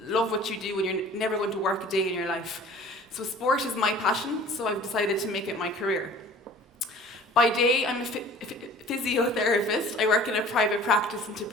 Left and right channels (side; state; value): both; normal; correlation 0.47